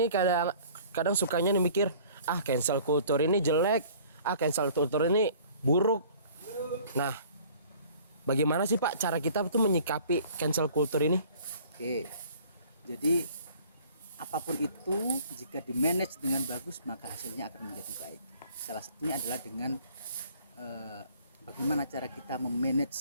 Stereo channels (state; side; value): inverted; both; correlation -0.52